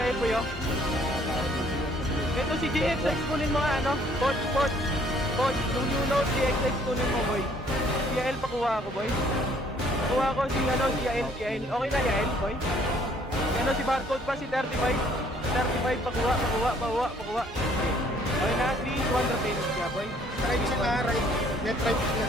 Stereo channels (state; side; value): normal; both; correlation 0.61